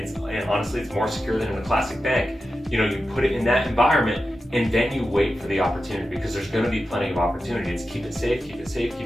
honestly it's more secure than in a classic bank. You put it in that environment, and then you wait for the opportunity, because there's going to be plenty of opportunity. It's keep it safe, keep it safe,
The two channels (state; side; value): normal; both; correlation 0.91